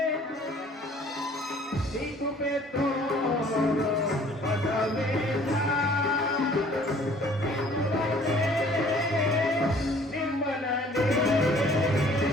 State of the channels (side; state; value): both; normal; correlation 0.55